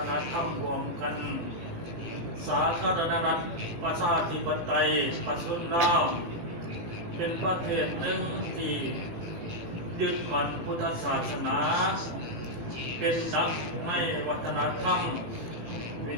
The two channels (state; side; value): late; left; 18 ms